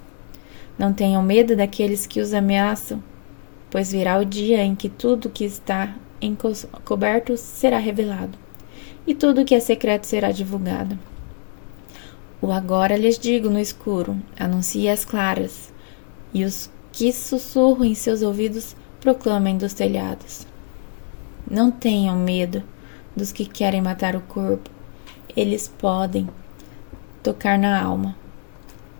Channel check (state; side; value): silent; right; 58 dB below the other